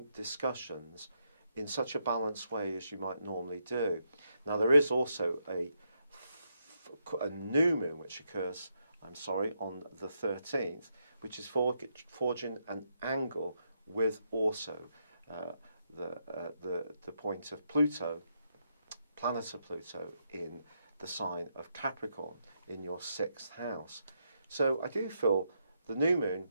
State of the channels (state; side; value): inverted; both; correlation -0.80